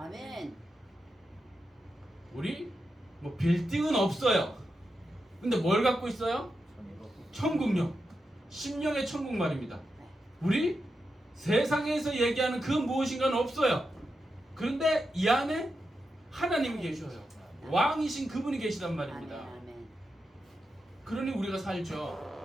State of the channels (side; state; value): both; normal; correlation 0.88